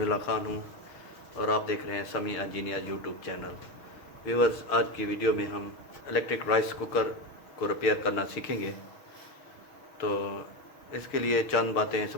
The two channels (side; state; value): right; late; 6.3 ms